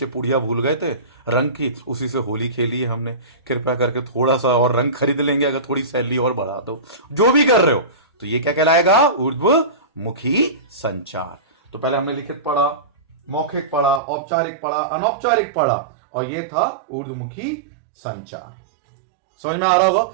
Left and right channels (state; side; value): drops out; left; at 14.0 s